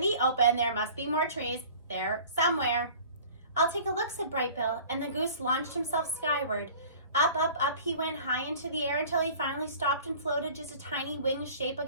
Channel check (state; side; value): inverted; both; correlation -0.45